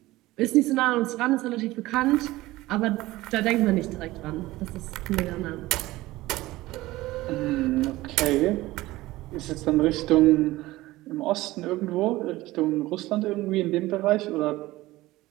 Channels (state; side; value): quieter; left; 18.1 dB